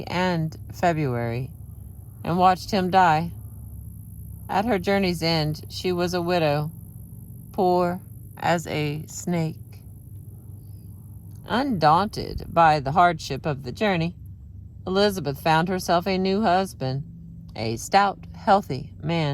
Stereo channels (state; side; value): identical; both; correlation 1.00